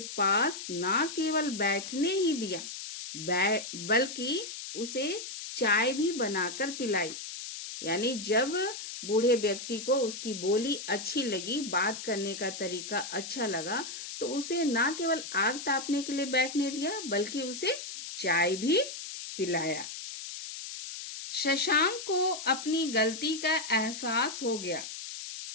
पास ना केवल बैठने ही दिया, बल्कि उसे चाय भी बनाकर पिलाई। यानी जब बूढ़े व्यक्ति को उसकी बोली अच्छी लगी, बात करने का तरीका अच्छा लगा, तो उसे ना केवल आग तापने के लिए बैठने दिया, बल्कि उसे चाय भी पिलाया। शशांक को अपनी गलती का एहसास हो गया।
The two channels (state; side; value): noise; left; hiss, 9 dB below the sound